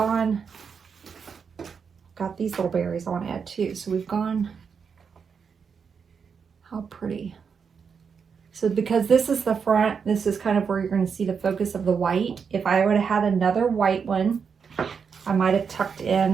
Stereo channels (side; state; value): left; quieter; 6.2 dB